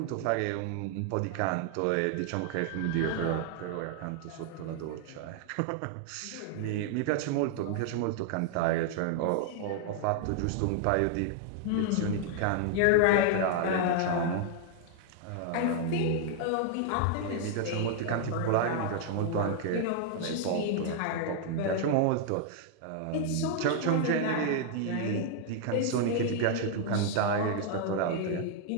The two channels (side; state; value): both; different; correlation 0.00